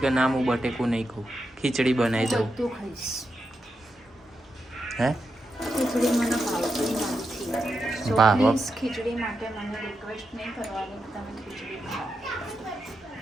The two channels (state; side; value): normal; both; correlation 0.86